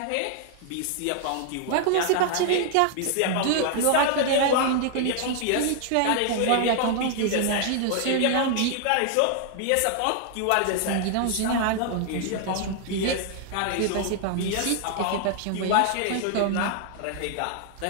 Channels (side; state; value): both; different; correlation 0.00